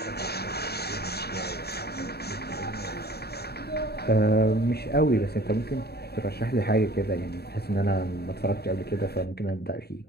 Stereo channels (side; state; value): right; late; 0.47 ms